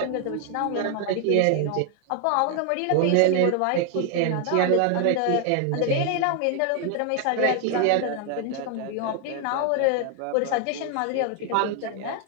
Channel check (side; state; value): both; different; correlation 0.00